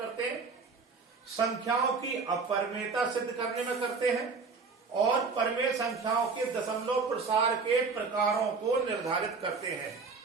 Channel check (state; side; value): quieter; left; 4.7 dB